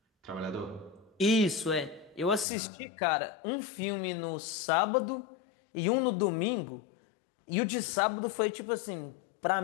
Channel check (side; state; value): right; drops out; at 2.5 s